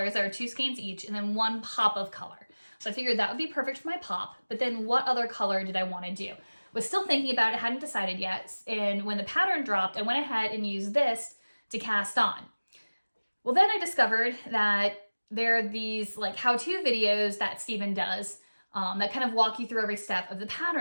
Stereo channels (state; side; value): inverted; both; correlation -1.00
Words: that are 2 skeins each and then 1 pop of color. So I figured that would be perfect for my pop, but then what other color did I want to do? Was still thinking about it, hadn't decided yet. And when the pattern dropped, I went ahead and used this to cast on. Well, then I discovered that there are these like how-to videos that Stephen does that kind of walk you through every step of the